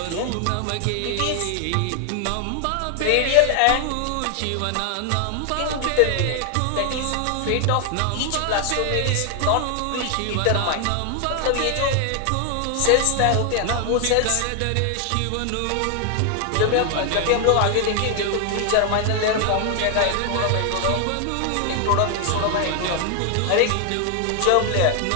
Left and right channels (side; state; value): both; different; correlation 0.00